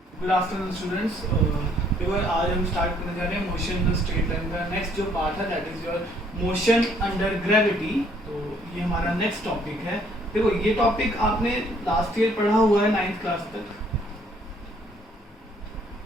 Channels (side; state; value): both; normal; correlation 0.64